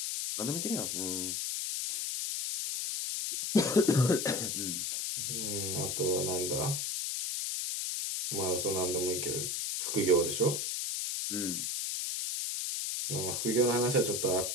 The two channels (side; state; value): left; noise; hiss, 1 dB below the sound